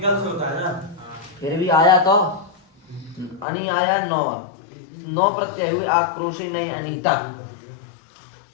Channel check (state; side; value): drops out; right; at 3.5 s